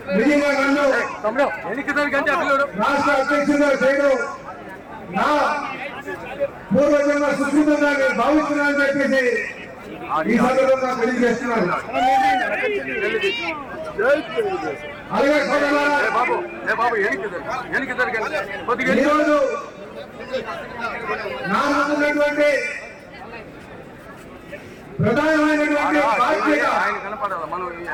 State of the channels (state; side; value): identical; both; correlation 1.00